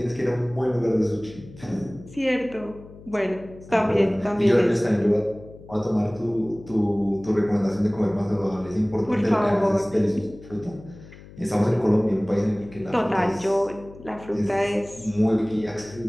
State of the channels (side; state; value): left; noise; hum, 19 dB below the sound